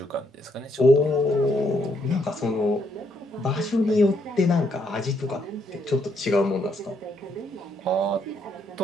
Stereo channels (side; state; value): both; normal; correlation 0.74